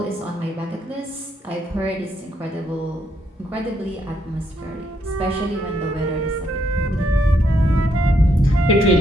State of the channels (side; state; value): both; normal; correlation 0.75